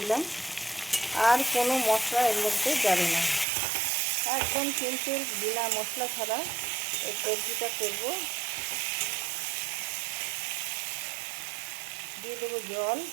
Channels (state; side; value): drops out; left; at 3.5 s